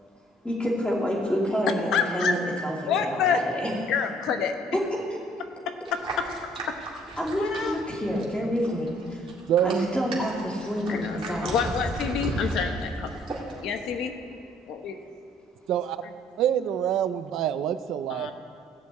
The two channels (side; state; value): both; normal; correlation 0.60